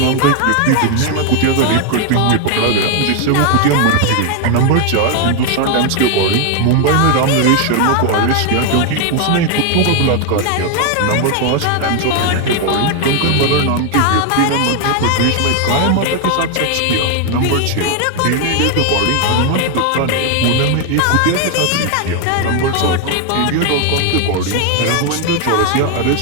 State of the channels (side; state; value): both; different; correlation 0.01